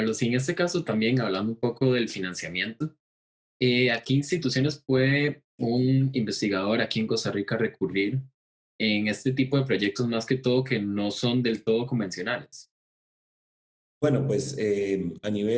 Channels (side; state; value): both; identical; correlation 1.00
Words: Y en este caso también hablando un poco del financiamiento, ¿a qué instituciones puede un investigador aquí en Costa Rica recurrir en este tipo de proyectos más que todo que no son del todo convencionales? Bueno, pues a